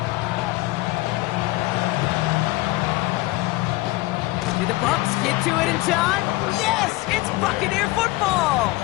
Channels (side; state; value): right; quieter; 20.5 dB